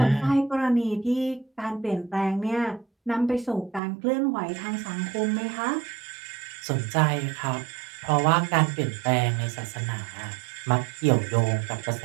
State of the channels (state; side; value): drops out; left; at 3.8 s